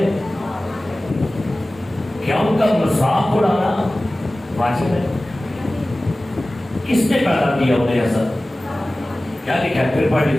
کیا ان کا مذاق اڑانا واجب ہے؟ کس نے پیدا کیا انہیں ایسا؟ کیا لکھا ہے؟ پھر پڑھ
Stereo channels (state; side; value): normal; both; correlation 0.97